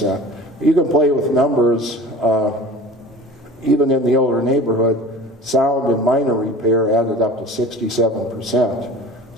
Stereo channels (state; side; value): normal; both; correlation 0.40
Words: You can play with numbers. Even in the older neighborhood, sound and minor repair added up to 67%.